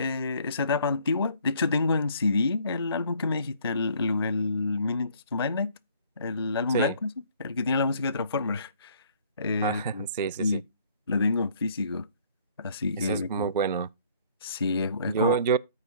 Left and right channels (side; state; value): both; inverted; correlation -0.60